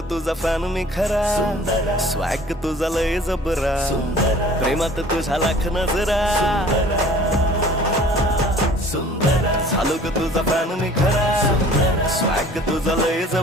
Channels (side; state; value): both; normal; correlation 0.49